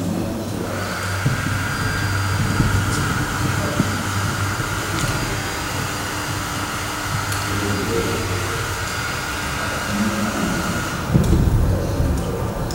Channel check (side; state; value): both; identical; correlation 1.00